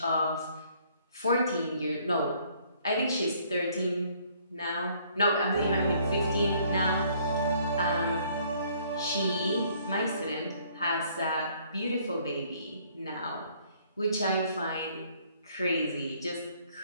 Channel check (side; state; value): both; inverted; correlation -0.62